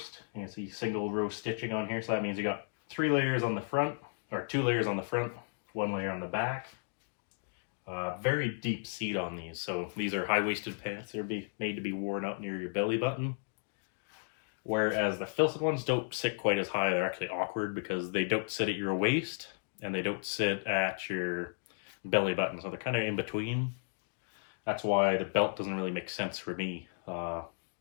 You can see single row stitching on here. So that means you got 3 layers on the front, or 2 layers on the front, 1 layer on the back. Very deep seat on these. So these are high-waisted pants. They're made to be worn up near your belly button. Whereas the Filson ones don't sit quite as high. They're actually awkward because they don't sit at your waist and they don't sit at your belly button. So they're kind of in between. That's why the belt doesn't really make sense for me.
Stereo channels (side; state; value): right; silent; digital silence